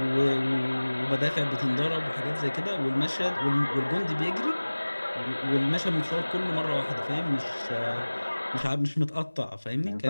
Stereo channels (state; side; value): inverted; both; correlation -1.00